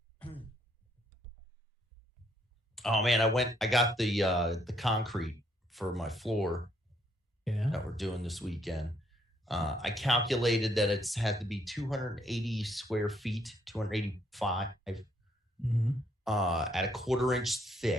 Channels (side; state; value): both; normal; correlation 0.70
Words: live. Oh man, I got the concrete for my floor that we're doing this weekend. I calculated that it's had to be 280 square feet, 285 at a 1/4 inch